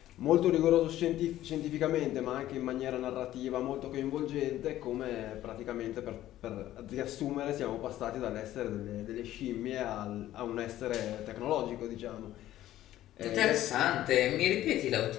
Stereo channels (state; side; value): quieter; right; 13.7 dB